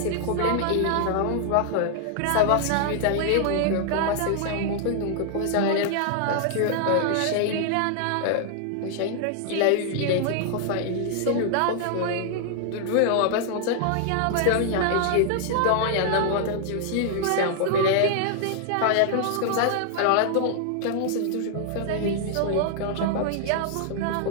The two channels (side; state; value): both; different; correlation 0.00